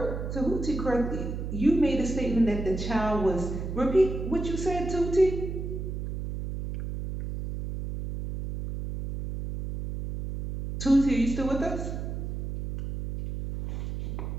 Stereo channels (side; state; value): right; noise; hum, 5 dB below the sound